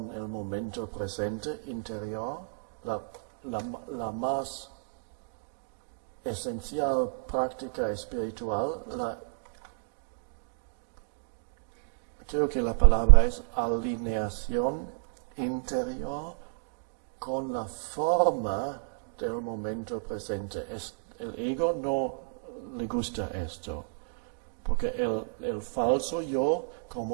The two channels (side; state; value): left; silent; digital silence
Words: el momento presente interior, la más esencial práctica espiritual. Creo que la palabra es alineación interior con la forma del momento presente. El ego no le gusta esto, porque el falso yo,